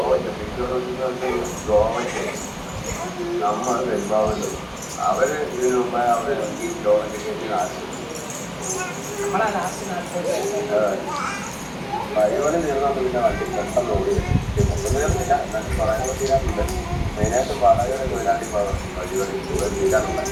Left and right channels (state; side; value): identical; both; correlation 1.00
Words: ഗോവയ്ക്ക് നമ്മൾ പെരുമ്പാവുണ്ട്. അവർ ഇതിനു മുമ്പേ അവർ ഈ ഗോവയ്ക്ക് കയറ്റി നാശം വഴിപണി തീർന്നാൽ പിന്നെ വണ്ടി പെട്ടെന്ന് ഓടി ഒന്നും തീർന്നില്ല. എന്നാലും പറയാനുള്ള തീരാറുണ്ട്. മെയിനായിട്ട് വാടകയുടെ തൊഴിലാളി വഴിപണി തീരാറുണ്ട്.